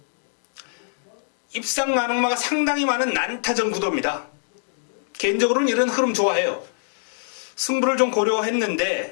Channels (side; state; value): right; silent; digital silence